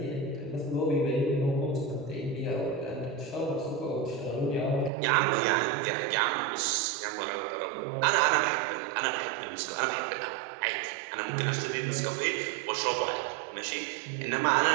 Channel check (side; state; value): left; drops out; at 4.9 s